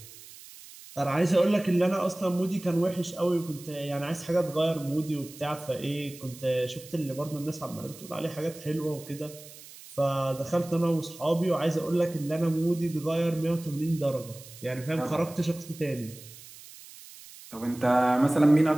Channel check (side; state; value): right; noise; hiss, 18 dB below the sound